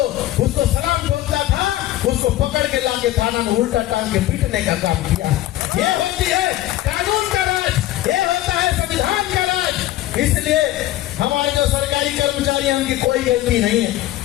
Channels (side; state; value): right; quieter; 15.1 dB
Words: उसको सलाम ठोकता था उसको पकड़ के लाके थाना में उल्टा टांग के पीटने का काम किया। ये होती है कानून का राज, ये होता है संविधान का राज। इसलिए हमारे जो सरकारी कर्मचारी हैं उनकी कोई गलती नहीं है,